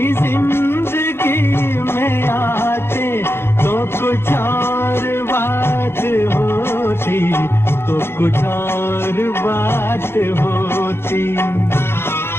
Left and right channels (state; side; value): late; right; 0.11 ms